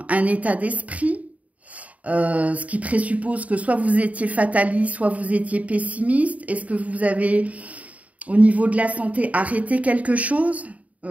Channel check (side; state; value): left; late; 0.069 ms